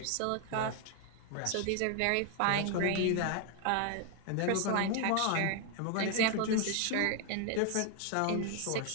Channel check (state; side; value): different; both; correlation 0.00